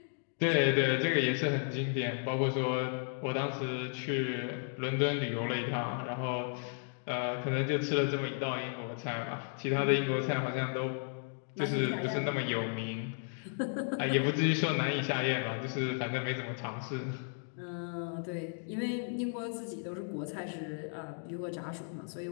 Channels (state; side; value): silent; right; 55 dB below the other